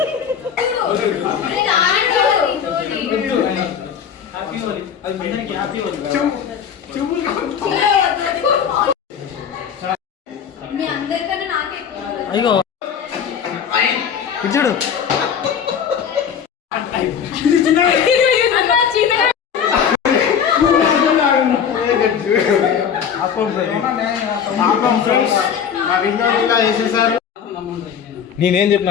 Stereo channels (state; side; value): quieter; right; 7.7 dB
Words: అయ్యో చూడు. నేనేం